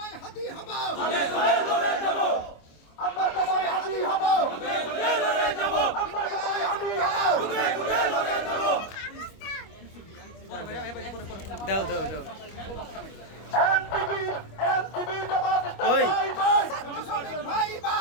হাতি হব আগে সবাই লড়ে যাব আমরা সবাই হাতি হব আগে লড়ে যাব আমরা সবাই হাতি হব খুদে খুদে লড়ে যাব দাও দাও দাও এনসিপি এনসিপি জামাত ওই ছাত্র শ্রমিক ভাই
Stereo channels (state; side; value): late; right; 25 ms